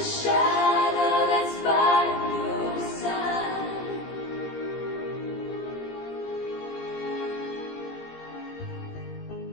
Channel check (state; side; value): late; right; 17 ms